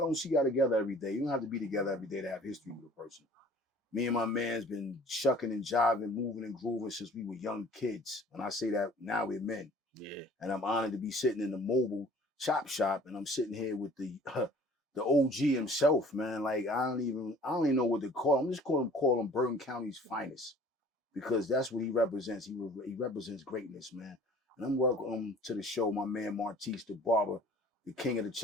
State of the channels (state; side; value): normal; both; correlation 0.51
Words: see y'all together every day. You don't have to be together every day to have history with a person. Me and my man's been shucking and jiving, moving and grooving since we were young kids. And I say that now we're men. Yeah. And I'm honored to be sitting in the mobile ChopShop, and I'm sitting here with the OG himself, man. Like I don't even know what to call him. I'm just call him Bergen County's finest, because that's what he represents. He represents greatness, man. And I'm welcome to the show, my man Martise the Barber, the king of the